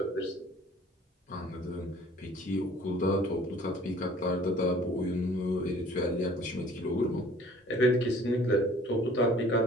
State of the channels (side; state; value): both; normal; correlation 0.52